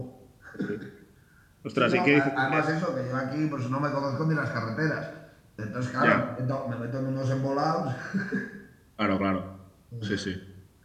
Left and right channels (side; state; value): both; identical; correlation 1.00